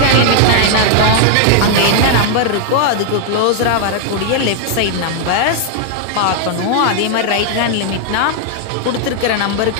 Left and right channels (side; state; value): both; different; correlation 0.00